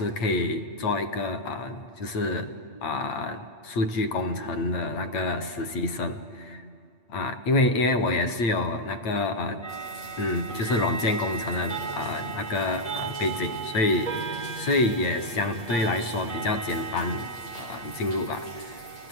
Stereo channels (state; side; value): late; right; 8.6 ms